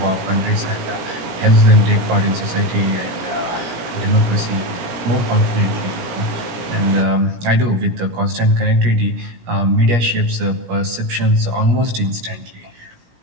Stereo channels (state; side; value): late; left; 17 ms